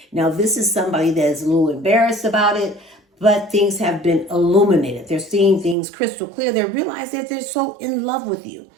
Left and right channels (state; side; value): drops out; left; at 5.8 s